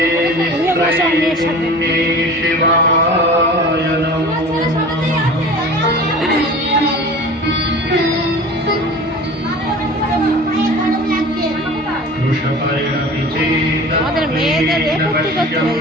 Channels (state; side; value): normal; both; correlation 0.39